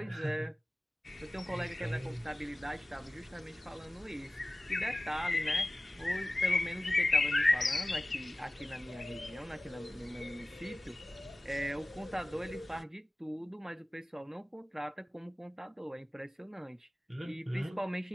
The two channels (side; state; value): both; normal; correlation 0.97